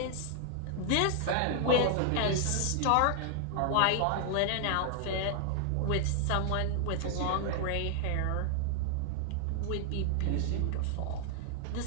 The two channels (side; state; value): both; different; correlation 0.00